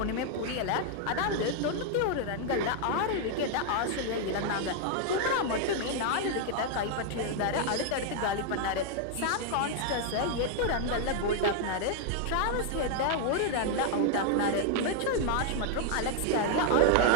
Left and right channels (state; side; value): different; both; correlation 0.00